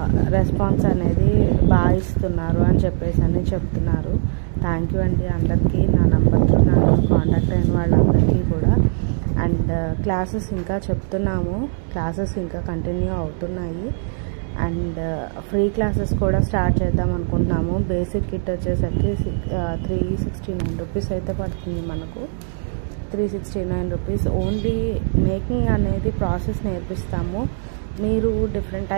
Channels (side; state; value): left; silent; digital silence